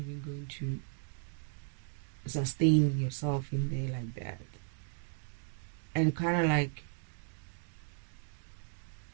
going to sustain yourself in there like that. And kind of like,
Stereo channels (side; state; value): left; silent; digital silence